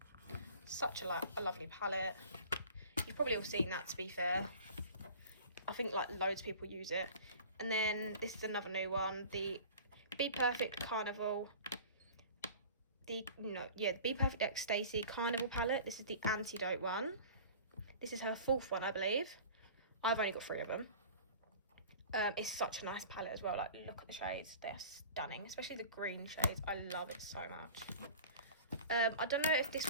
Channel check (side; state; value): both; inverted; correlation -0.42